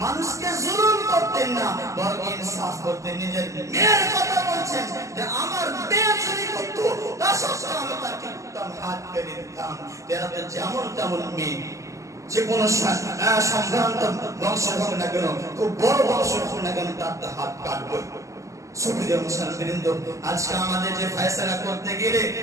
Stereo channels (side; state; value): left; late; 0.16 ms